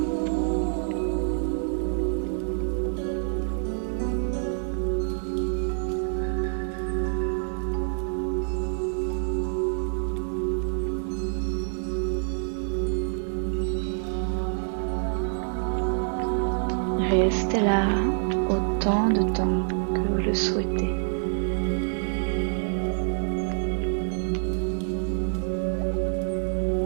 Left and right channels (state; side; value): silent; left; 60 dB below the other